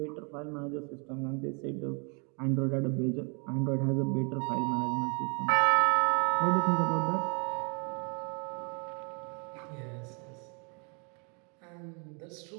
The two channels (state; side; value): quieter; left; 35.8 dB